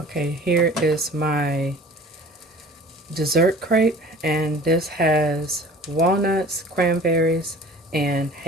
Okay, here is my dessert crepe, and this has walnuts, cranberries, and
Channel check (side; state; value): both; normal; correlation 0.45